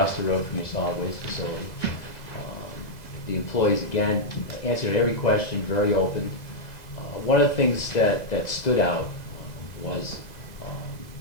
the road from your solid waste facility, the employees, again, answered every question, very open. One of the things that stood out was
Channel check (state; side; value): late; right; 2.0 ms